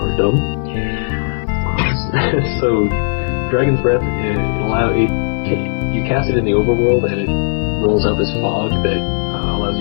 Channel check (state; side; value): silent; right; digital silence